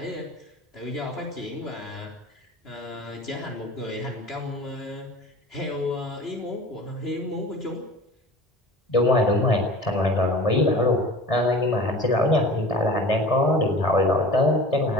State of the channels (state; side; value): normal; both; correlation 0.40